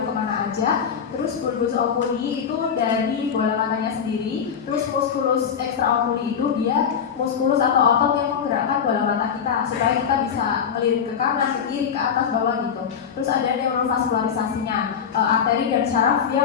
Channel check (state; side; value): quieter; right; 7.4 dB